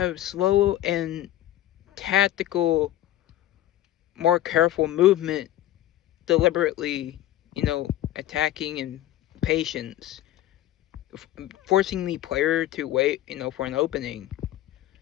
slow and tactical, more careful movement deliberately, attacking and patience, forcing the player to wait, for an opening.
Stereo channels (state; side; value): quieter; right; 13.6 dB